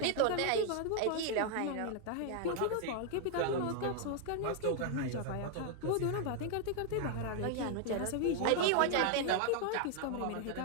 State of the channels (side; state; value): both; different; correlation 0.00